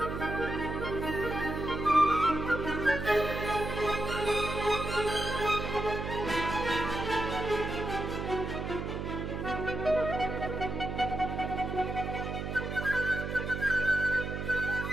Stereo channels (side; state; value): right; noise; hum, 4 dB below the sound